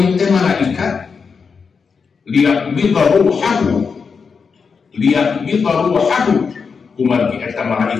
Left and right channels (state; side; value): quieter; right; 5.5 dB